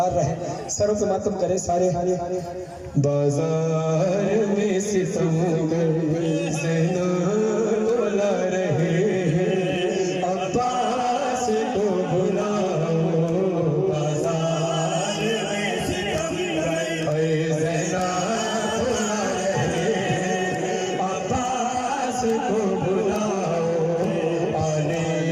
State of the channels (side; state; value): both; identical; correlation 1.00